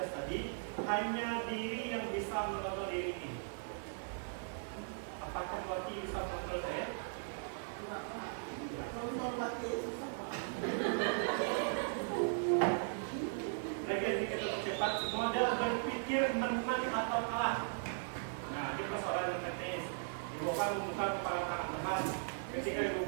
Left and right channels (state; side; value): silent; left; 52 dB below the other